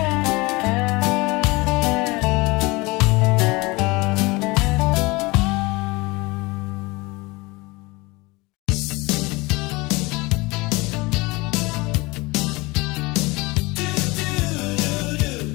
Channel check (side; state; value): right; quieter; 23.8 dB